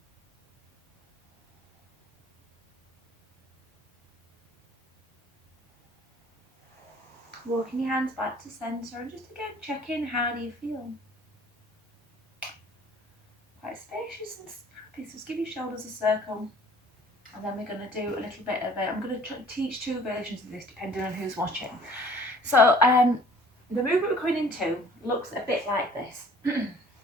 Walking your hands back to centre and just again check in, how do you feel? Quite spacious and happy, so just give your shoulders a circle. And then we're going to do a little bit of it. I'm going to teach two versions of this depending on who's watching. So the movement we're going into looks a bit like this.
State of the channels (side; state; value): both; normal; correlation 0.52